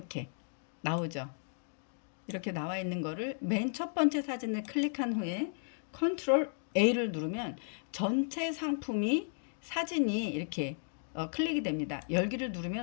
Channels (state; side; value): silent; right; digital silence